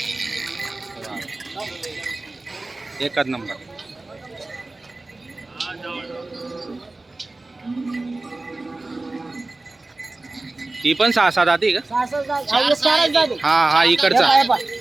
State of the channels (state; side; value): quieter; left; 3.1 dB